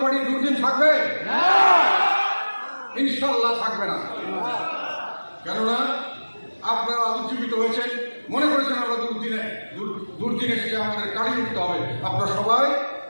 পার্টির দুর্দিন থাকবে? ইনশাল্লাহ থাকবে না। কেননা আপনারা উজ্জীবিত হয়েছেন, মনে করেছেন আমরা দুর্দিনে এসে আমাদের কাটিয়ে উঠতে হবে। আপনারা সবাই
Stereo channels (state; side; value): inverted; both; correlation -1.00